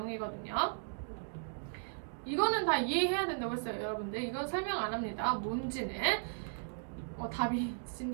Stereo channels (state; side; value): silent; left; digital silence